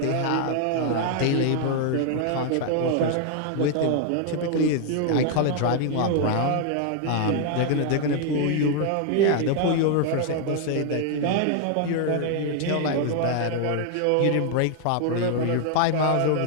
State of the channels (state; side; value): different; both; correlation 0.00